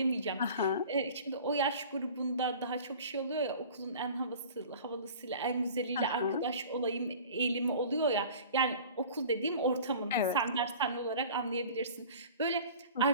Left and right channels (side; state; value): both; inverted; correlation -0.43